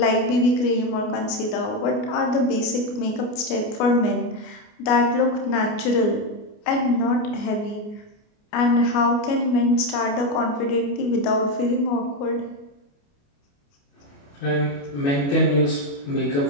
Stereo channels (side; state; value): right; late; 29 ms